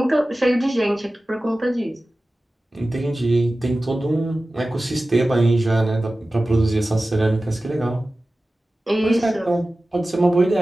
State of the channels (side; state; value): both; normal; correlation 0.96